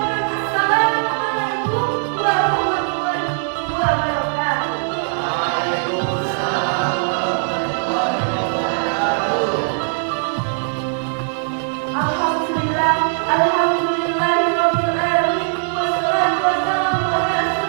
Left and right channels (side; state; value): left; silent; 64 dB below the other